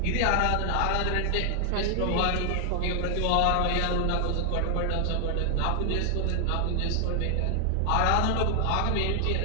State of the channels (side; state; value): both; different; correlation 0.00